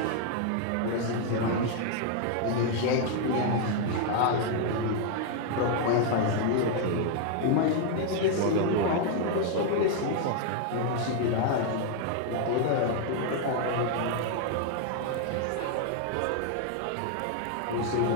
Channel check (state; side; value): different; both; correlation 0.00